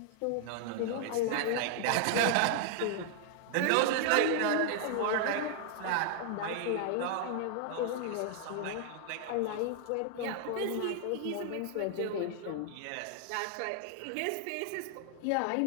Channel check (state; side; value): different; both; correlation 0.00